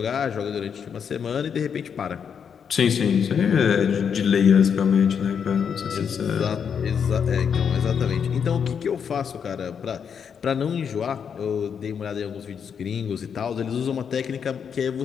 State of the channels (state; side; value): quieter; right; 7.2 dB